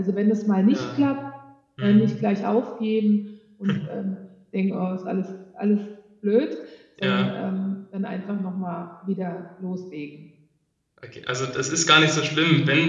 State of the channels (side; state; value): both; identical; correlation 1.00